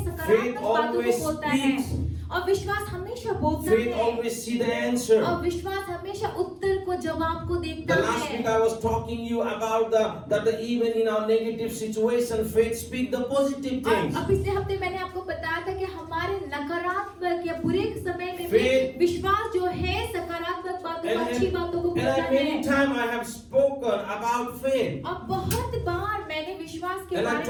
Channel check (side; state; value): both; identical; correlation 1.00